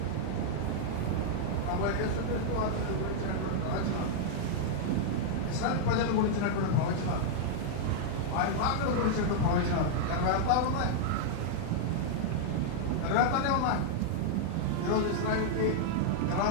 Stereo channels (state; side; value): different; both; correlation -0.01